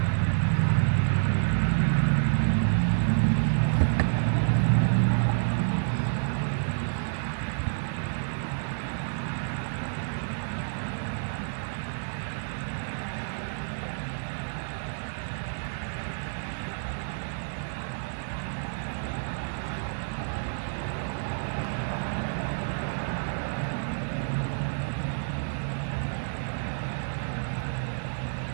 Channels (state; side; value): silent; left; digital silence